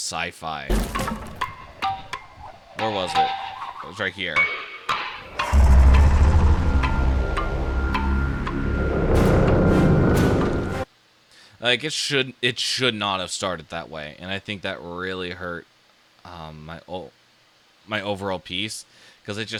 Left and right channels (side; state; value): both; identical; correlation 1.00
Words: Where was it? It was right here. Like it should not have started that way, and I think that really hurt my overall piece because it